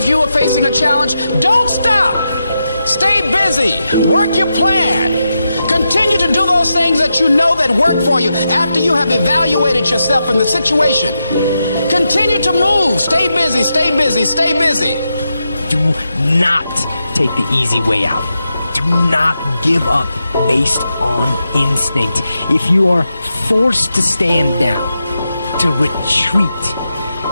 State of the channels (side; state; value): both; inverted; correlation -0.87